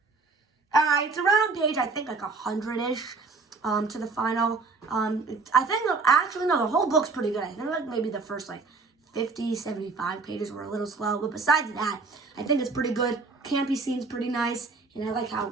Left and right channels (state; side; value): quieter; left; 4.1 dB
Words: It's around page I think like 100-ish to the final. I think actually no, the whole book's pretty good. I think like maybe the first like 50, 75 pages were a little slow, but besides that, I think it's pretty good. Campy scene's pretty nice. And I like